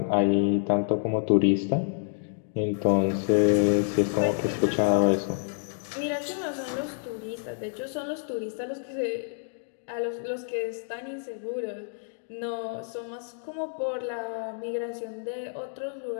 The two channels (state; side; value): silent; right; digital silence